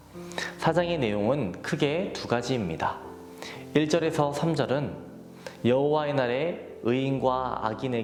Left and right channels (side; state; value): both; identical; correlation 1.00